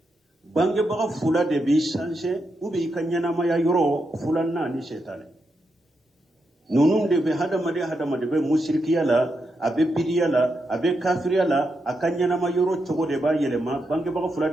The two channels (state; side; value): normal; both; correlation 0.84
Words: bange baga fula de bi sanse ubi ikanyana ma ya yoro fula na ni shetane nunum de be hada made be musrikiya la abe bidiya la abe kafiriya la akanyana ma yoro chogo de ba yelema bange baga fula